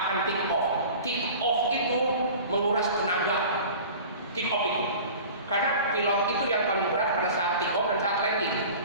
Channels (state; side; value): inverted; both; correlation -0.40